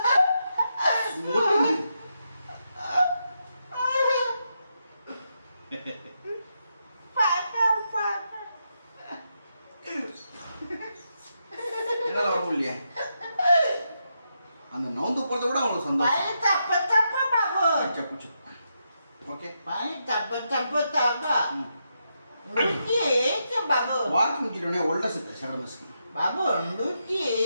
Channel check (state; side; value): inverted; both; correlation -0.83